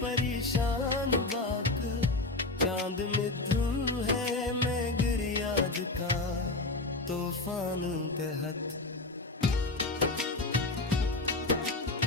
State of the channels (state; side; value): quieter; right; 3.1 dB